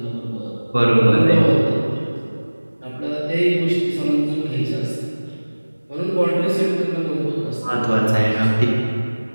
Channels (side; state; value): both; inverted; correlation -1.00